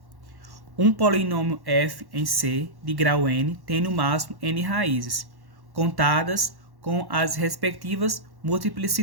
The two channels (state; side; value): late; left; 1.1 ms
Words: um polinômio f em C de grau n tem no máximo n raízes, contadas com as respectivas